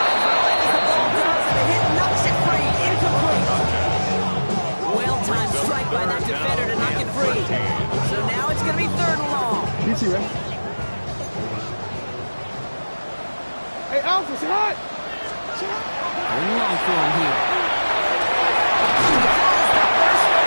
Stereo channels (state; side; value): inverted; both; correlation -1.00